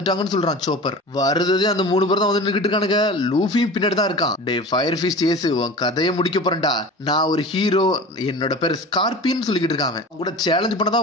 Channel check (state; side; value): normal; both; correlation 0.35